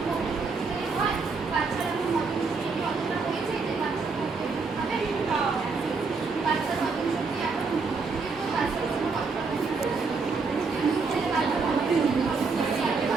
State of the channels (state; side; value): quieter; left; 4.5 dB